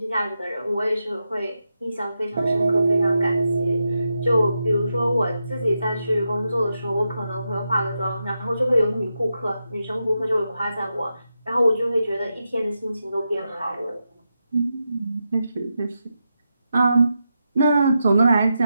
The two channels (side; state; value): both; inverted; correlation -0.87